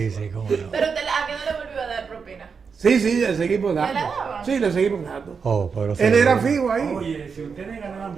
sí, cómo no. Pero ¿a qué no le volvió a dar propina? Sí, le seguimos dando. ¿Le la daban? Sí, le seguimos dando. Oh, pero Él sí. era fijo ahí. Oye, si ustedes ganaban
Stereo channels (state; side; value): quieter; left; 5.7 dB